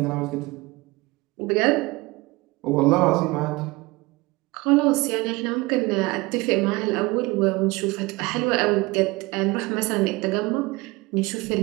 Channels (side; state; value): left; quieter; 22.7 dB